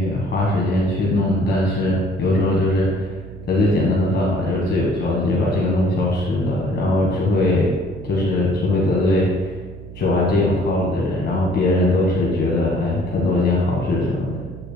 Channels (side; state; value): right; noise; hum, 15 dB below the sound